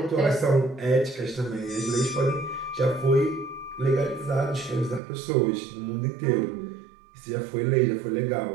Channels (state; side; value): drops out; left; at 5.0 s